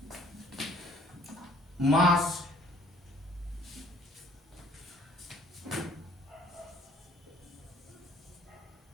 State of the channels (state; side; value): normal; both; correlation 0.56